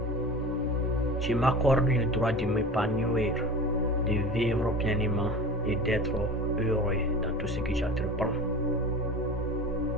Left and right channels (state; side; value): normal; both; correlation 0.35